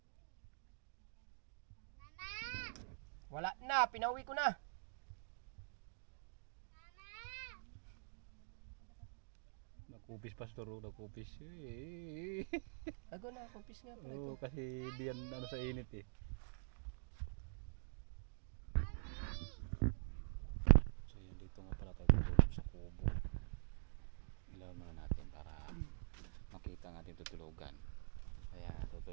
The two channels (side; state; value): left; silent; digital silence